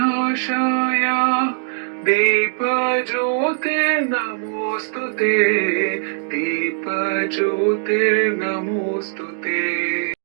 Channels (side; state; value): left; silent; digital silence